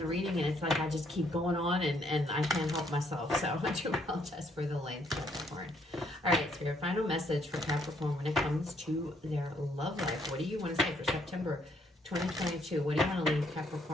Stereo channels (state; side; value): normal; both; correlation 0.69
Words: reading and it's like I just keep going on and I can't help myself. So I do apologize for the length, Capricorn. All right, Spirit, final message for Capricorn when it comes to their love life. What do you want to say for September 2022? What do you want to leave